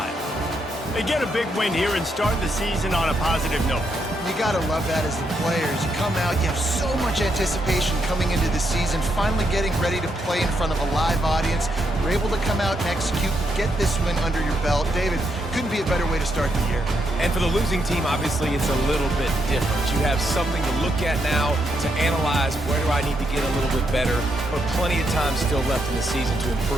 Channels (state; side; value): normal; both; correlation 0.79